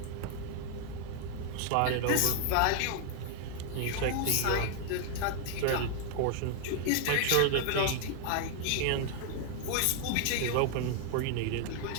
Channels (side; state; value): both; different; correlation 0.00